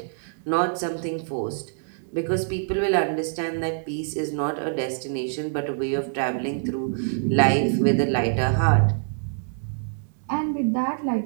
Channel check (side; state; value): left; silent; digital silence